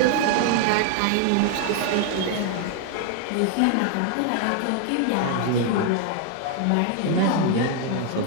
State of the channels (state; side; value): different; both; correlation 0.00